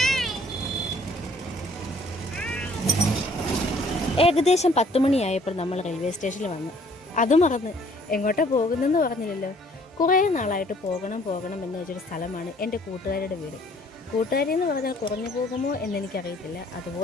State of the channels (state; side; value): normal; both; correlation 0.59